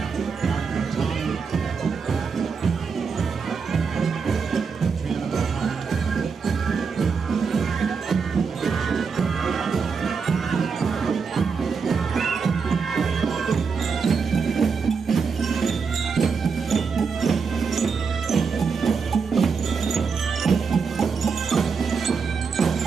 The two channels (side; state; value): left; quieter; 5.5 dB